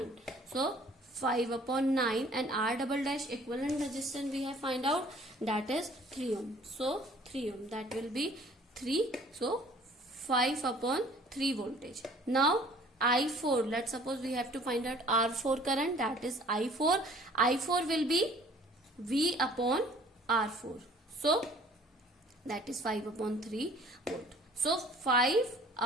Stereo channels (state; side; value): normal; both; correlation 0.53